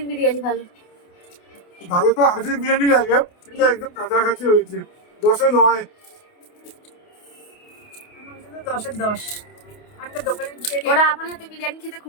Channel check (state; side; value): late; right; 28 ms